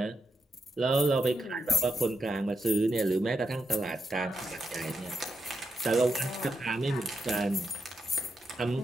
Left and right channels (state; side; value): normal; both; correlation 0.83